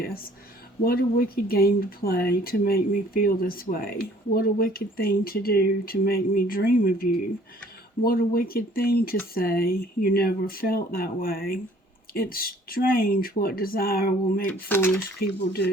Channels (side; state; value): both; normal; correlation 0.56